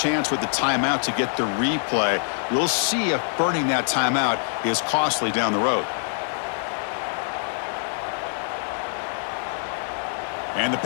with the timeout to get the replay. We'll see if burning that timeout is costly down the road. And the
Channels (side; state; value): right; silent; 62 dB below the other